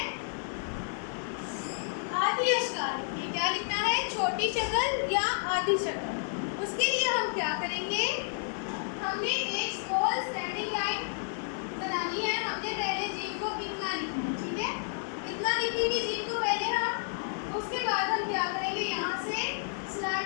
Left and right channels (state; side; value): silent; right; digital silence